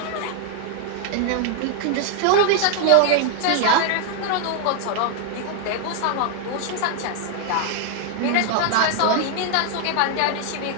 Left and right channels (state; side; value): different; both; correlation 0.00